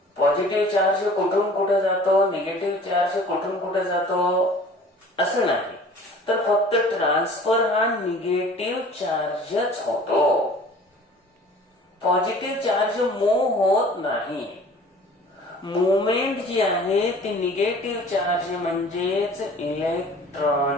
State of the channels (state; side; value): normal; both; correlation 0.47